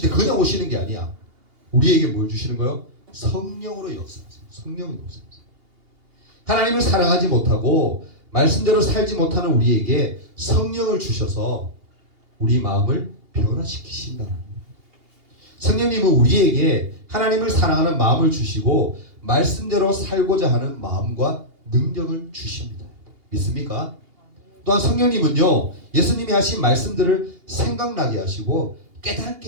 때 그냥 오시는 게 아니야. 우리에게 뭘 주시는 거예요? 성령으로 역사하세요. 성령으로 역사하세요. 하나님을 사랑하지 못하고 말씀대로 살지 못하는 우리에게 성령을 주셔서 우리 마음을 변화시키신다는 거예요. 성령님은 우리에게 하나님을 사랑하는 마음을 주시고 말씀대로 살고자 하는 마음과 능력을 주십니다. 믿습니까? 또한 성령님은요, 예수님이 하신 말씀들을 생각나게 하시고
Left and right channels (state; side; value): late; left; 2.8 ms